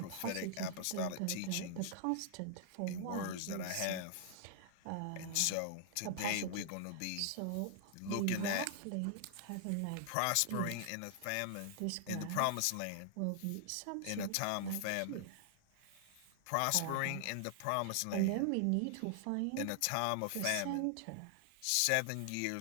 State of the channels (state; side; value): different; both; correlation -0.01